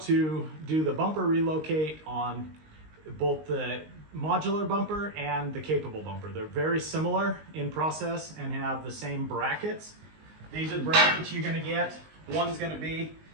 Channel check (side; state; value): left; late; 19 ms